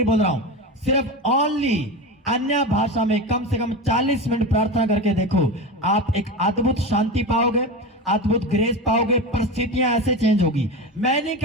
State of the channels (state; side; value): normal; both; correlation 0.23